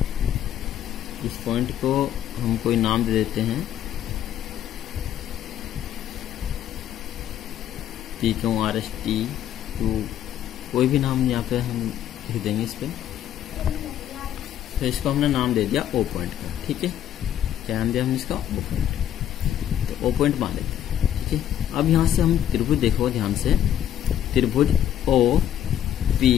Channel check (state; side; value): quieter; right; 10.8 dB